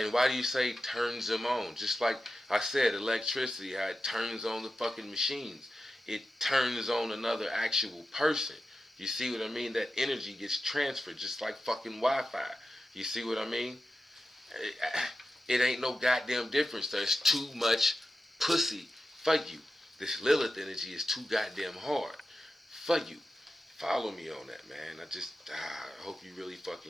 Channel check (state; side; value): normal; both; correlation 0.91